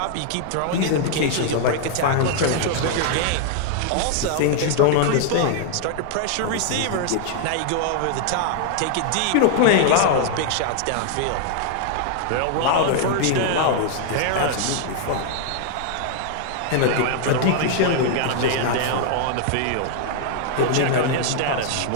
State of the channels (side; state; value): both; different; correlation 0.00